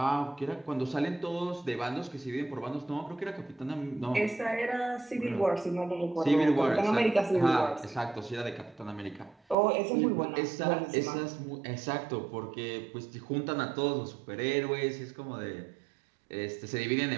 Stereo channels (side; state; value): left; drops out; at 9.6 s